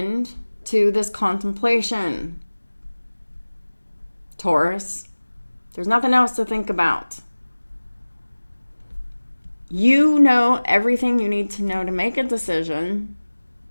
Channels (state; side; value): inverted; both; correlation -1.00